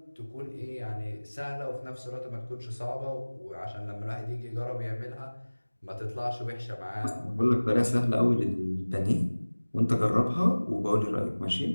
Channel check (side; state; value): both; inverted; correlation -1.00